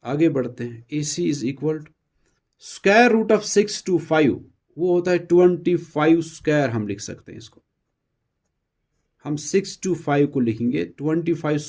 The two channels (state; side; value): identical; both; correlation 1.00